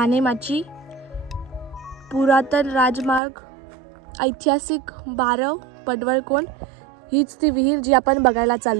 पुरातन राजमार्ग, ऐतिहासिक बारव, पडवळकोंड. हीच ती विहीर जी आपण बघायला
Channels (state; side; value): drops out; left; at 3.2 s